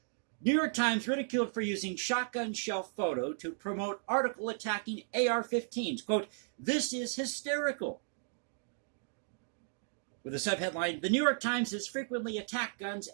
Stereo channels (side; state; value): left; silent; digital silence